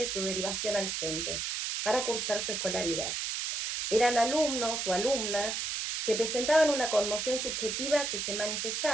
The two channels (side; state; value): right; noise; hiss, 2 dB below the sound